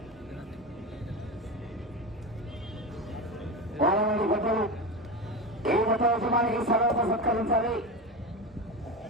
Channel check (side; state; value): both; normal; correlation 0.22